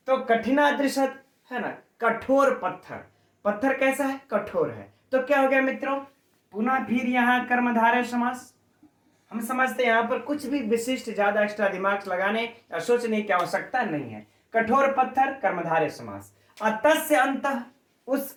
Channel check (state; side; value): identical; both; correlation 1.00